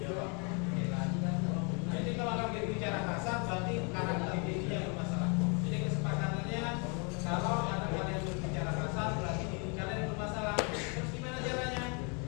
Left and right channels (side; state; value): right; quieter; 34.7 dB